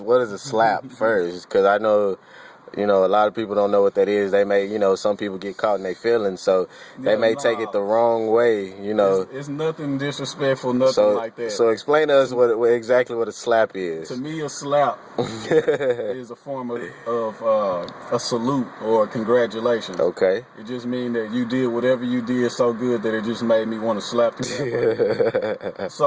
a slap first? Because I know, you know, a lot of people don't know what that is. They may, you know, some people get caught in their feelings, so they may take it the wrong way, you know. It's nothing disrespectful, nothing like that. So explain to us exactly what a slap is. To me, a slap is a form of a salute or a congratulations. Okay. It just means that you did whatever you did so good that it just made me want to slap you.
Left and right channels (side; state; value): both; identical; correlation 1.00